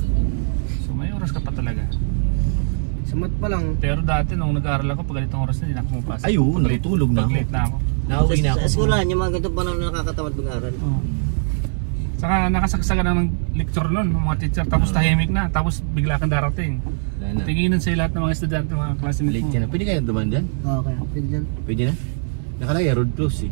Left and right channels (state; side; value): silent; left; 60 dB below the other